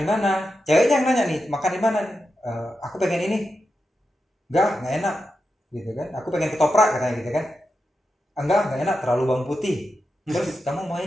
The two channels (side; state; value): both; normal; correlation 0.88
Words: di mana? Ceweknya yang nanya nih, makan di mana nih? Aku pengen ini. Enggak enak gitu kan. Aku pengen ketoprak katanya gitu kan. Enggak enak, terlalu bawang putih. Terus kamu